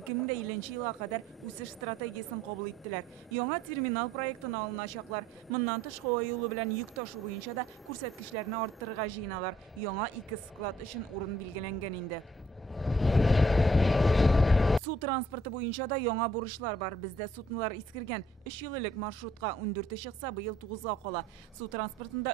елга кадәр үсеш стратегиясын кабул иттеләр. Яңа терминал проектын алыначаклар. Моннан тыш һава юлы белән йөк ташу буенча да күрсәткечләрне арттырырга җыеналар. Яңа 2 склад өчен урын билгеләнгән инде. Су транспорты буенча да яңа бурычлар бар. Бездә суднолар искергән. 3 еллык маршрутка 14 чыкса, быел 9-га кала. Су транспортында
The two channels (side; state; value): both; normal; correlation 0.62